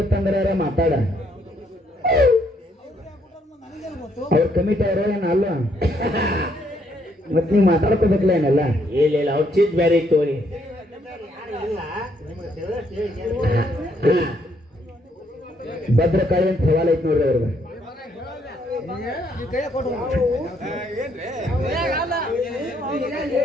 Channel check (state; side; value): normal; both; correlation 0.71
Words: ಮಾತಾಡ ಅವ್ರ ಕಮಿಟಿ ಅವರು ಏನ ಅಲ್ಲ ಮತ್ ನೀವ್ ಮಾತಾಡ್ಕೋಬೇಕಲ್ಲ ಏನೆಲ್ಲ ಇಲ್ಲ ಅವ್ರ ಚೀಟ್ ಬೇರೆ ಇತ್ತು ಅವ್ರಿ ಭದ್ರಕಾಳಿ ಅಂತ ಸವಾಲ್ ಐತಿ ನೋಡ್ರಿ ಅವ್ರಿಗೆ